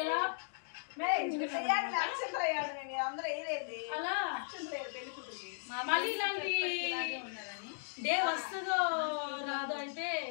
ఎలా అలా మళ్ళీ ఇలాంటి డే వస్తుందో రాదో అయితే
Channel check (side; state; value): right; silent; digital silence